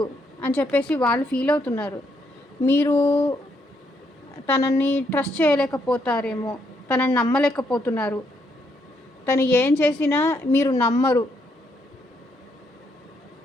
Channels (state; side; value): normal; both; correlation 0.75